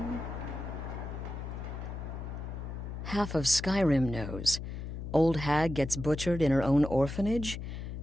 Half of Skyrim knows. Old hag gets butchered in her own orphanage.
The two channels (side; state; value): left; noise; hum, 7 dB below the sound